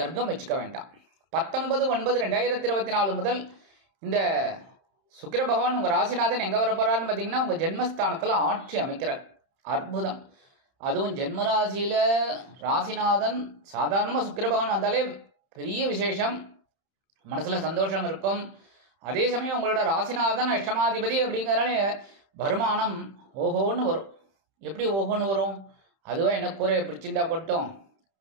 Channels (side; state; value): left; late; 31 ms